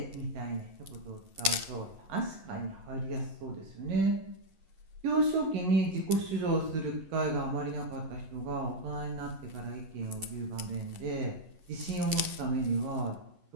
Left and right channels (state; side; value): late; left; 11 ms